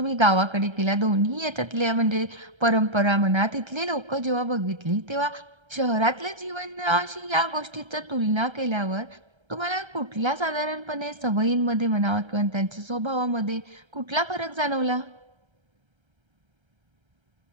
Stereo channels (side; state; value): left; late; 1.3 ms